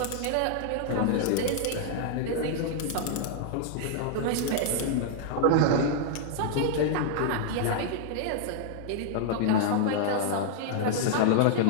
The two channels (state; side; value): different; both; correlation 0.00